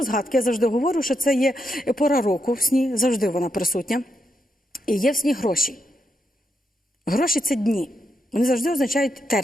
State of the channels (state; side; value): normal; both; correlation 0.82